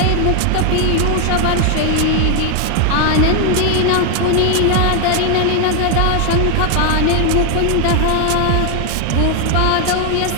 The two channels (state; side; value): different; both; correlation 0.00